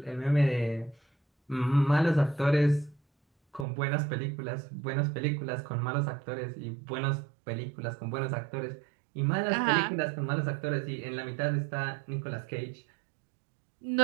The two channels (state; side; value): drops out; left; at 3.7 s